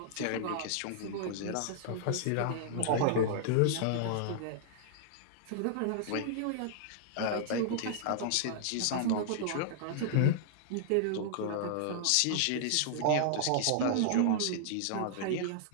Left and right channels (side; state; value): both; different; correlation -0.01